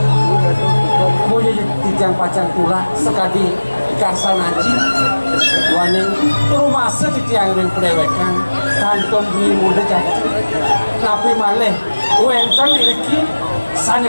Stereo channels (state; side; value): inverted; both; correlation -1.00